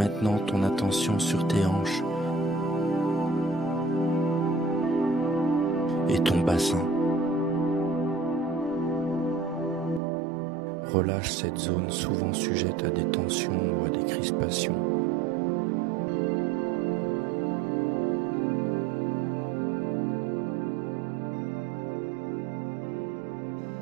ton attention sur tes hanches et ton bassin. Relâche cette zone souvent sujette à des tensions ou à des crispations.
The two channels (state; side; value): drops out; left; at 10.0 s